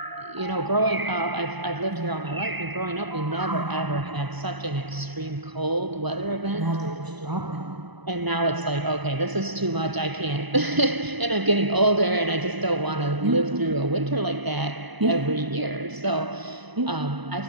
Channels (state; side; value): late; left; 1.0 ms